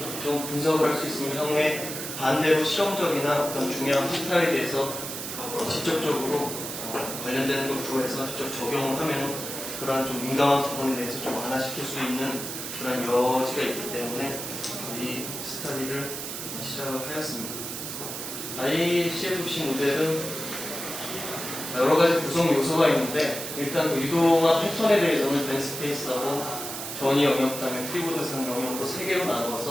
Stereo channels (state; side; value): noise; right; hiss, 6 dB below the sound